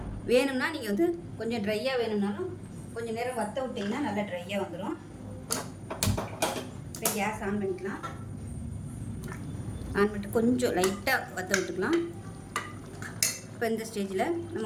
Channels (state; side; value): identical; both; correlation 1.00